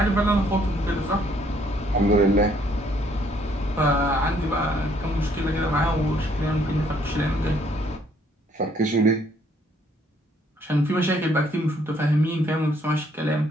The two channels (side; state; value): both; normal; correlation 0.66